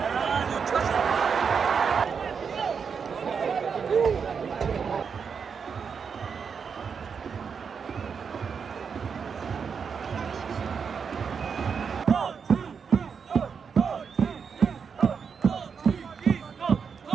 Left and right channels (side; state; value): left; quieter; 6.2 dB